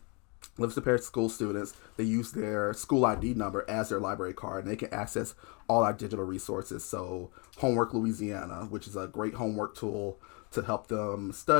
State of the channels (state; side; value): quieter; right; 31.8 dB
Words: Livingston Parish school students, they use their school ID number as their library card, and they can access all our digital resources. So Homework Louisiana, which is a great homework tool to help them